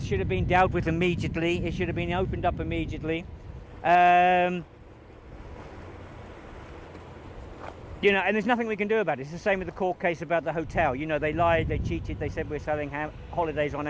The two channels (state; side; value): identical; both; correlation 1.00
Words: should have been dealt with immediately. It should have been opened up immediately. You know, and there's nothing we can do about it. It's the same with the court case about the hotel. You know, they lied, they cheated, they said we're selling holidays on